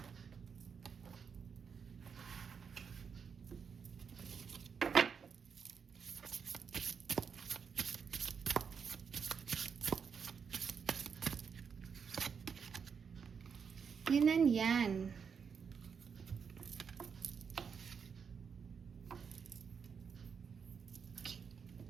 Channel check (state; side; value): quieter; left; 6.4 dB